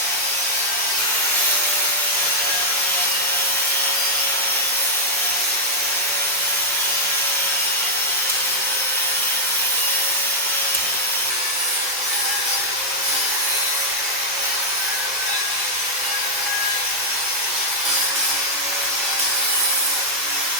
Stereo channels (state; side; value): normal; both; correlation -0.05